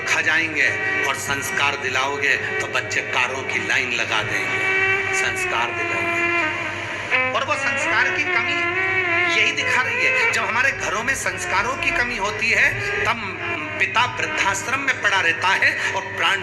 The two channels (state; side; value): identical; both; correlation 1.00